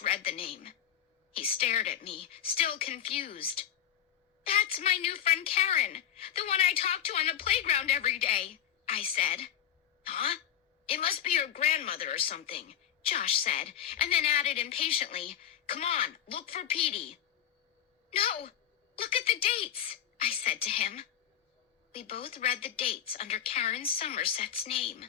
read the name. He stared at me, still confused. That's my new friend Karen, the one I talk to on the playground every day, I said. Huh? It must be your grandmother or something, Josh said, and then added impatiently, Come on, look for Petey. No, look at the dates, I said to him. We both read the dates under Karen Somerset's name.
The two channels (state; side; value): quieter; right; 10.0 dB